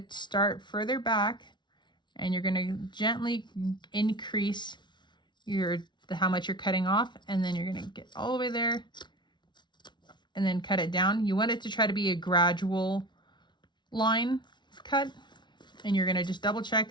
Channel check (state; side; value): late; right; 0.22 ms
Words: start further back, and you're going to gently increase how much you're cutting off, and then you're going to get all the way there and then cut it down. You want it to try to be a gradual line cut, and you're going to just double